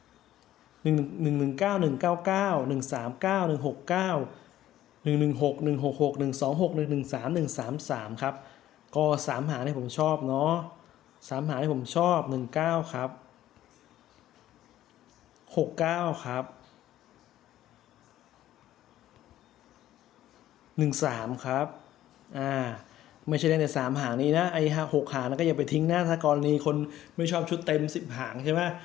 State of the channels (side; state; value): right; quieter; 13.3 dB